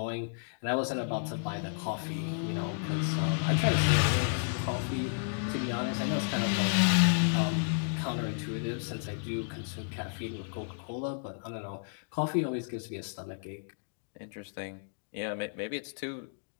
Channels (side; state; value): right; silent; digital silence